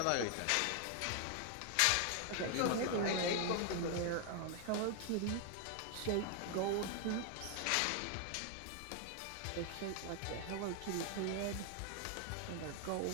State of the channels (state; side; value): different; both; correlation 0.00